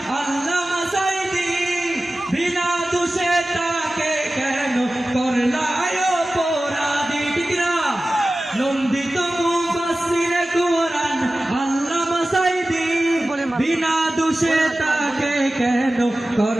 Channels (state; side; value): normal; both; correlation 0.96